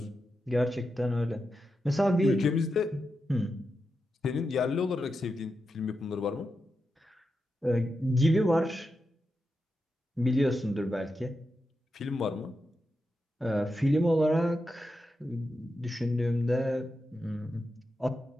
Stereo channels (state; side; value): normal; both; correlation 0.88